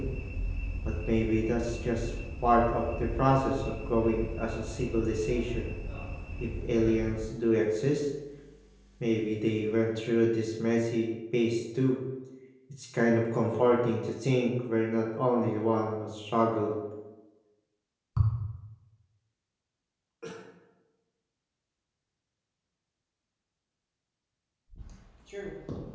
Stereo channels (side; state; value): both; identical; correlation 1.00